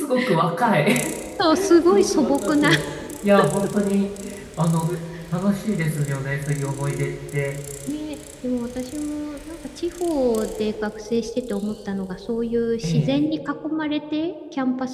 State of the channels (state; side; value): identical; both; correlation 1.00